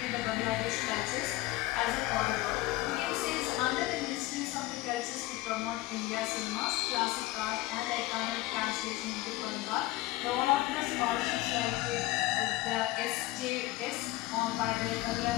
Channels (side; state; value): right; quieter; 18.0 dB